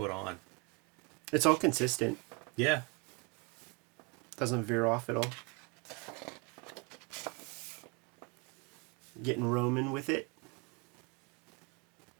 on. It's all consistent. Yeah. Doesn't veer off at all. Getting Roman with it.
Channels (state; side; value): quieter; left; 29.2 dB